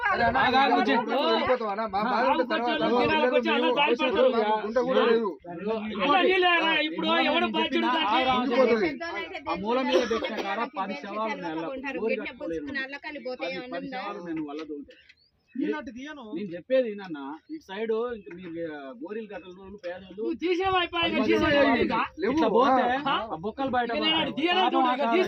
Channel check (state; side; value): identical; both; correlation 1.00